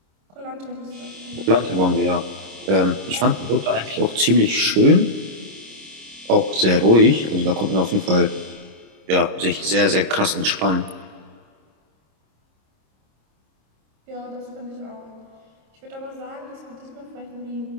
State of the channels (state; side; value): late; left; 26 ms